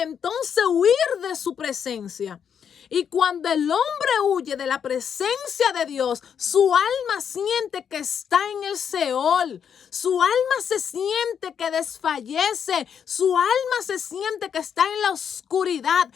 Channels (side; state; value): right; quieter; 7.8 dB